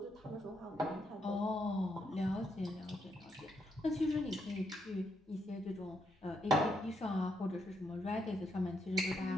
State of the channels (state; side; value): normal; both; correlation 0.77